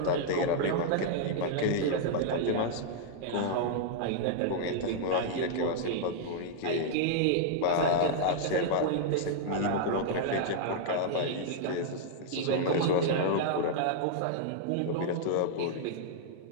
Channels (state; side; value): different; both; correlation -0.01